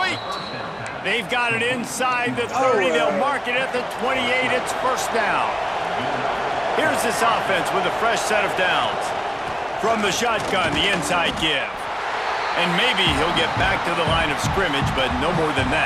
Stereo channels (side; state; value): both; identical; correlation 1.00